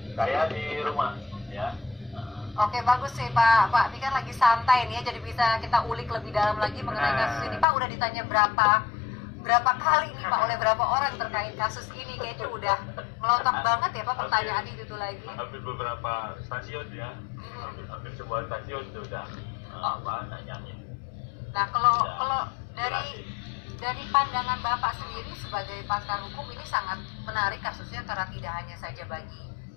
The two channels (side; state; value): right; drops out; at 7.7 s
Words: Saya di rumah, ya. Oke, bagus sih, Pak. Pak Fikar lagi santai nih ya, jadi bisa kita ulik lebih dalam lagi mengenai kasus ini. Pak, udah ditanya berapa kali nih Pak oleh berapa orang terkait kasus ini? Kayaknya udah melotot banget ya Pak pertanyaan itu tuh lagi. Hampir beberapa stasiun ya. Hampir semua stasiun sudah nanyain. Nah, kalau dari pandangan Bapak sendiri sebagai pakar hukum, ini sangat menarik kasusnya karena tidak hanya saja bagi